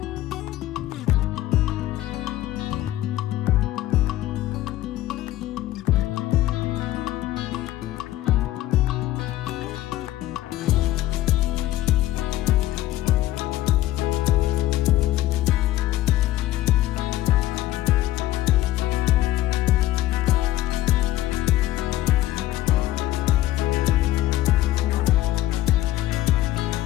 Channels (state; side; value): quieter; right; 14.8 dB